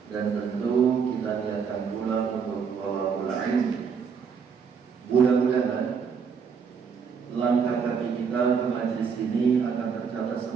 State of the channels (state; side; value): quieter; left; 6.3 dB